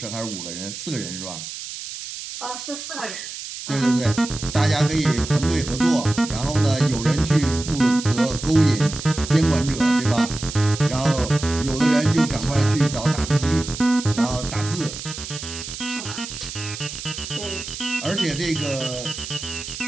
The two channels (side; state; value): right; noise; hiss, 9 dB below the sound